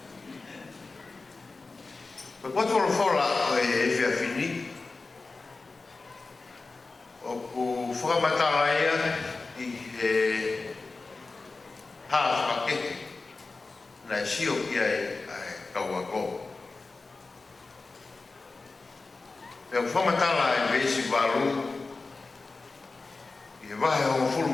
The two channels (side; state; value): right; quieter; 3.7 dB